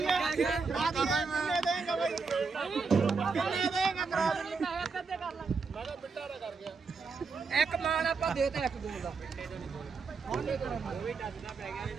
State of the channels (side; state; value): left; quieter; 4.8 dB